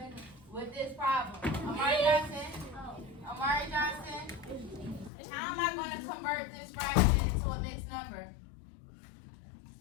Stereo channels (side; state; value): right; drops out; at 5.1 s